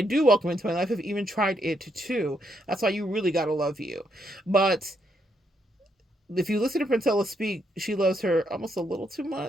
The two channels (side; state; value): both; normal; correlation 0.76